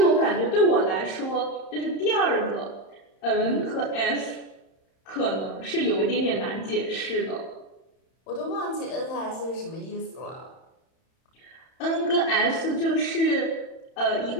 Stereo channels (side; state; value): right; late; 31 ms